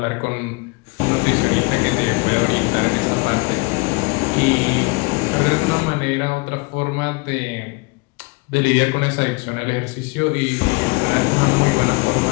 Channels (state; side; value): quieter; right; 27.9 dB